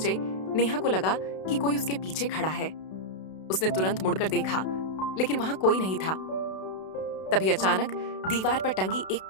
नेहा को लगा कि कोई उसके पीछे खड़ा है। उसने तुरंत मुड़कर देखा, लेकिन वहां कोई नहीं था। तभी अचानक दीवार पर टंगी एक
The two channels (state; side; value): late; right; 32 ms